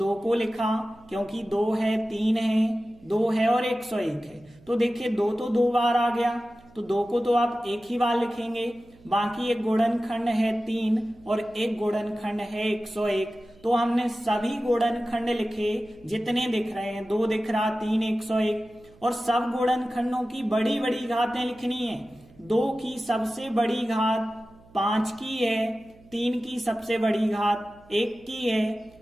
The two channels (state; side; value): noise; right; hum, 26 dB below the sound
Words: को लिखा, क्योंकि 2 है, 3 है, 2 है और 101 है। तो देखिए 2 तो 2 बार आ गया, तो 2 को तो आप एक ही बार लिखेंगे। बाकी एक गुणनखंड है 3 और एक गुणनखंड है 101। तो हमने सभी गुणनखंड लिखे जितने दिख रहे हैं, 2 दिख रहा, 3, 101, और सब गुणनखंडों की बड़ी बड़ी घातें लिखनी है। 2 की सबसे बड़ी घात 5 की है, 3 की सबसे बड़ी घात 1 की